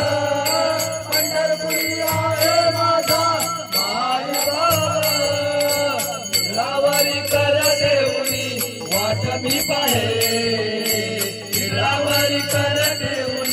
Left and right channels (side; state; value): both; identical; correlation 1.00